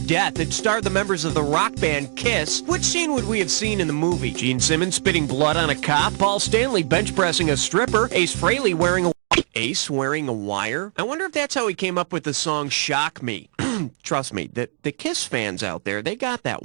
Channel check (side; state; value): left; silent; 58 dB below the other